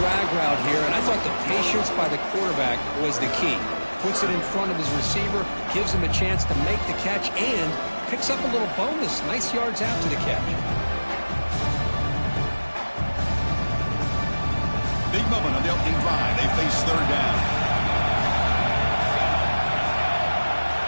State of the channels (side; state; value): both; inverted; correlation -1.00